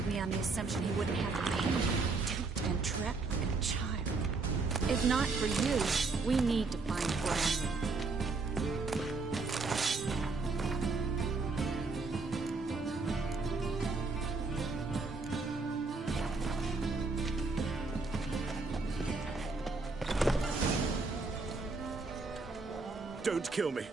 me on the assumption he wouldn't have to pay me. Duped and trapped like a child. If not for you, we need to find Brandon. Don't kill me.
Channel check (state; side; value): quieter; left; 3.9 dB